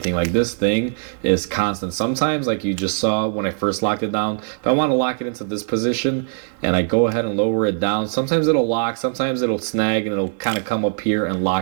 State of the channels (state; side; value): silent; left; 56 dB below the other